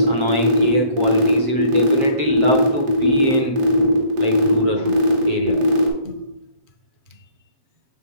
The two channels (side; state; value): left; late; 7.5 ms